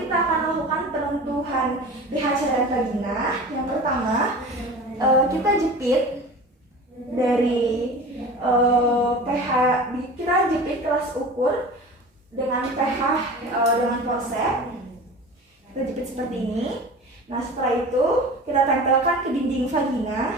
kita akan melakukan penentuan pH cairan vagina. Yang pertama, kita jepit dari pH, kita jepit kelas ukur dengan pH dengan forceps. Kita jepit seperti ini. Nah, setelah itu kita tempelkan ke dinding vagina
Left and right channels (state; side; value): normal; both; correlation 0.36